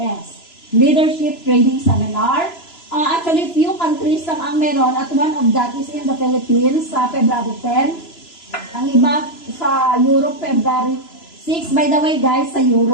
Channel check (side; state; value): right; late; 3.0 ms